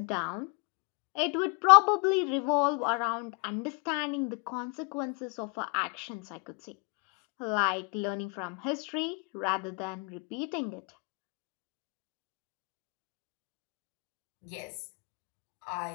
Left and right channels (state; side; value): quieter; right; 33.3 dB